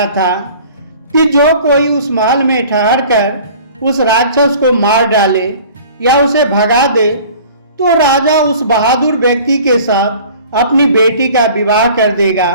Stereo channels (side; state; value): both; inverted; correlation -0.46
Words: था कि जो कोई उस महल में ठहर कर उस राक्षस को मार डाले या उसे भगा दे तो राजा उस बहादुर व्यक्ति के साथ अपनी बेटी का विवाह कर देगा